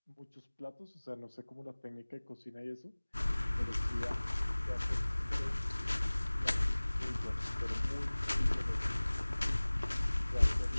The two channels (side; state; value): both; inverted; correlation -1.00